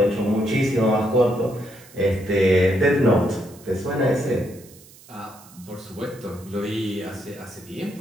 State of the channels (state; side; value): noise; right; hiss, 23 dB below the sound